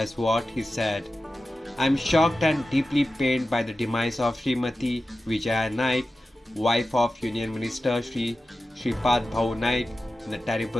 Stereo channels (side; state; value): both; normal; correlation 0.94